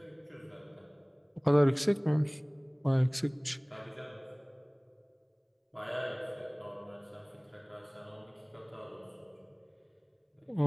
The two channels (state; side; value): identical; both; correlation 1.00